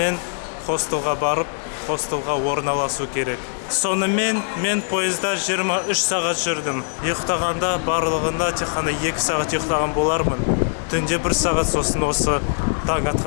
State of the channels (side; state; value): right; silent; digital silence